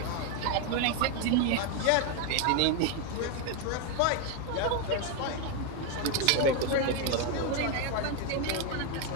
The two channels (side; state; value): both; different; correlation 0.01